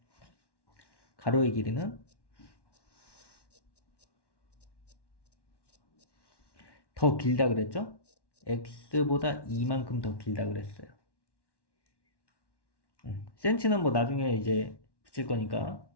가로의 길이는 더 길다 그랬죠? x보다 2만큼 더 길다 그랬어요. 센치는 뭐 나중에 이제 붙일 거니까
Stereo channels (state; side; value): late; right; 1.1 ms